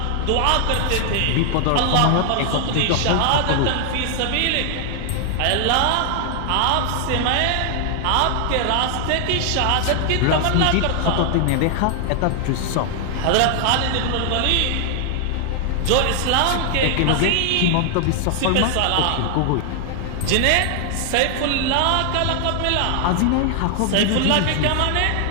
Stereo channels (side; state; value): both; different; correlation 0.00